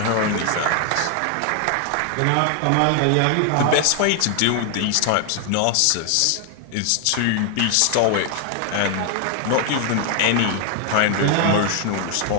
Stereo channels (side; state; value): both; different; correlation 0.00